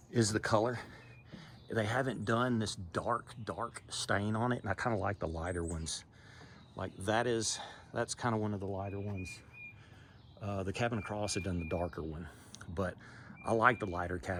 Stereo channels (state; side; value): identical; both; correlation 1.00